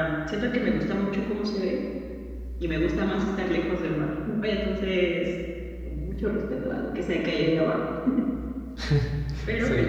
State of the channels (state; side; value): identical; both; correlation 1.00